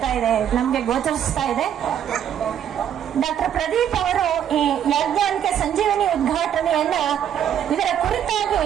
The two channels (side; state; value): left; quieter; 9.6 dB